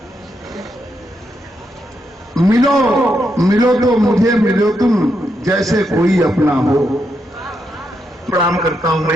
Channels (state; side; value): normal; both; correlation 0.81